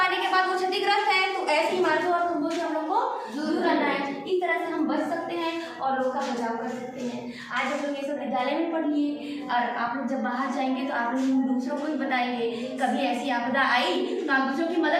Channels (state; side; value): identical; both; correlation 1.00